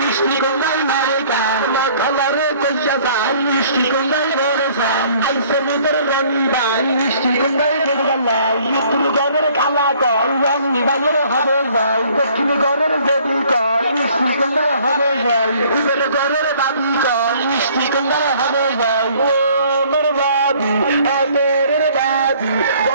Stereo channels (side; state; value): both; inverted; correlation -0.57